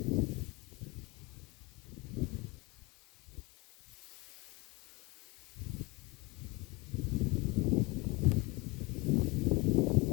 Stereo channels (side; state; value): right; quieter; 25.6 dB